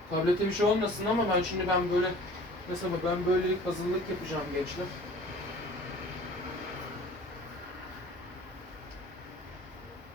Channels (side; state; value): both; normal; correlation 0.46